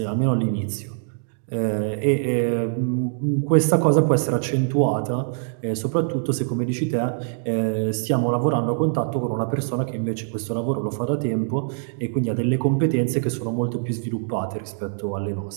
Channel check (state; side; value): silent; left; digital silence